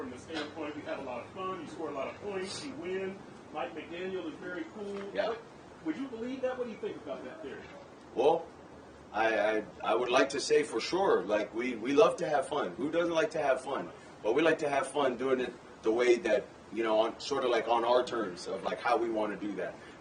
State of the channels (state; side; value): identical; both; correlation 1.00